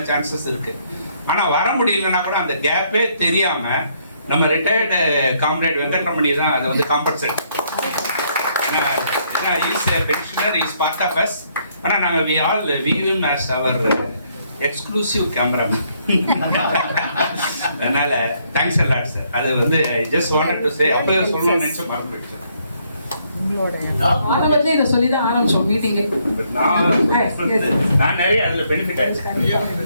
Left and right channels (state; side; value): inverted; both; correlation -0.70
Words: சான்சஸ் இருக்கு. ஆனா வர முடியலன்னா கூட அந்த கேப்பே தெரியாம நம்ம ரிட்டையர்டு காம்ரேட் வெங்கட்ரமணி தான் அதை வந்து காம்பன்சேட். ஏன்னா is pensioner, is part of us. ஆனா நாங்க we all view him as our exclusive cameraman. அதனால தேங்க்ஸ் a lot சார். அது வந்து I just wanted to say அப்பவே சொல்லணும்னு நினைச்ச மறந்துட்டேன். ஆரம்பத்துல இதை சொல்லி தான் ஆரம்பிச்சோம் மீட்டிங்கு. நான் நிறைய அதுல பெனிஃபிட் ஆயிடுச்சு.